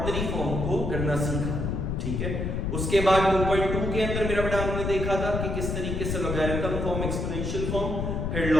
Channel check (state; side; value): noise; left; rumble, 1 dB below the sound